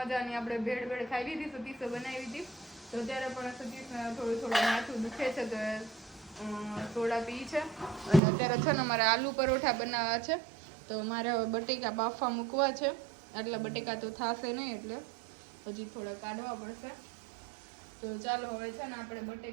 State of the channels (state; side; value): drops out; left; at 8.2 s